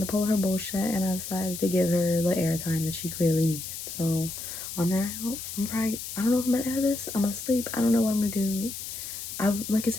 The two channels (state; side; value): noise; left; hiss, 8 dB below the sound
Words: pull her bullshit, and I decided to give her the airtime that she clearly needed. So, on that note, I don't know if I'm gonna edit this. I'm gonna sleep. I don't know what I'm gonna do. Like I